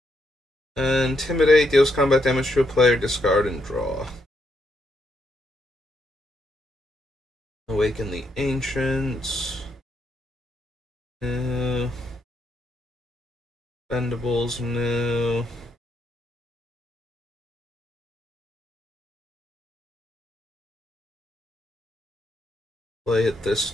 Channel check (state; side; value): normal; both; correlation 0.78